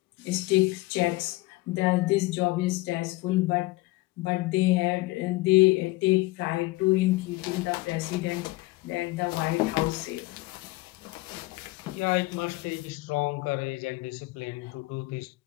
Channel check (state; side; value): quieter; right; 20.5 dB